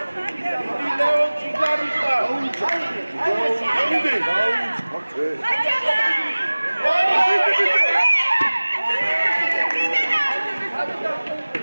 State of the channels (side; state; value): both; inverted; correlation -1.00